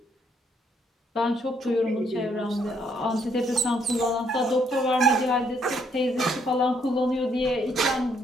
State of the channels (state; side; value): normal; both; correlation 0.70